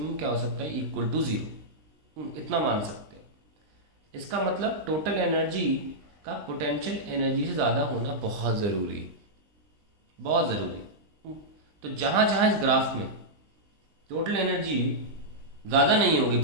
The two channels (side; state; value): left; late; 20 ms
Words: क्या हो सकता है, इक्वल टू जीरो। इतना मान सकते हैं। इसका मतलब टोटल एनर्जी का पोटेंशियल एनर्जी से ज़्यादा होना बहुत ज़रूरी है, बहुत ज़रूरी। तो जहाँ जहाँ इस ग्राफ में टोटल एनर्जी ज़्यादा नहीं होगी